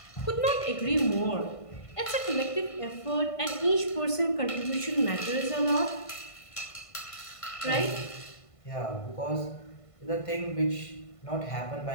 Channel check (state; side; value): late; right; 1.5 ms